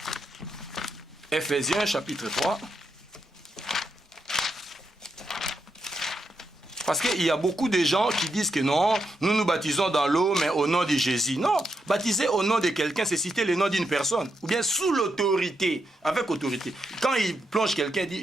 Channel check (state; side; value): normal; both; correlation 0.83